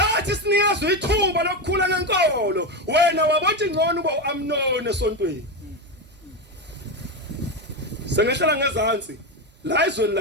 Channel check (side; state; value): both; normal; correlation 0.13